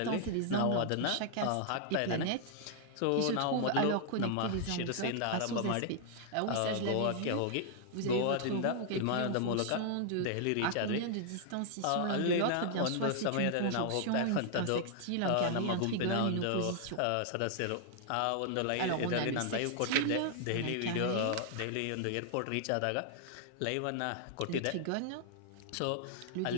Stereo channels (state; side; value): different; both; correlation 0.00